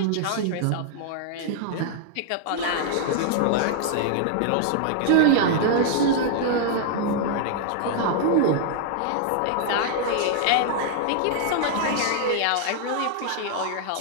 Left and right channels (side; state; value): both; different; correlation -0.01